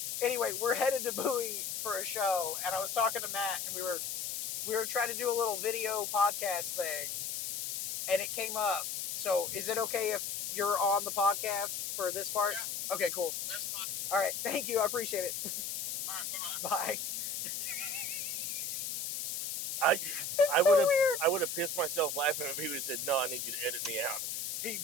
anyway, we're headed to Bowie for a show, and I was talking to Matt, and we were trying to do a little video podcast thing, and it came up. So, is it okay if you're on the podcast for this part? Yeah. Okay, cool. That's fine. All right, thank you. I appreciate it. All right, bye-bye. Bye. I It's so weird. I would have pissed myself laughing if he would have said, "No, I need you to edit me out." He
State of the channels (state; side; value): noise; left; hiss, 3 dB below the sound